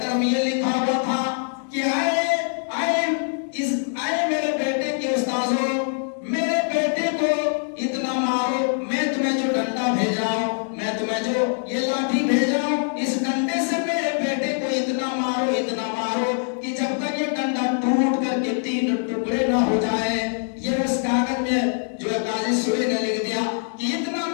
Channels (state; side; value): silent; right; 58 dB below the other